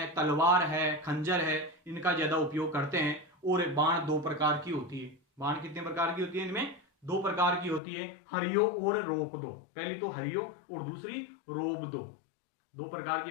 तलवार है, खंजर है, इनका ज्यादा उपयोग करते हैं। और बाण दो प्रकार की होती है। बाण कितने प्रकार की होती है, इनमें दो प्रकार की होती है, हरियो और रोप दो। पहली तो हरियो और दूसरी रोप दो, दो प्रकार की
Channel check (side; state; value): right; drops out; at 7.8 s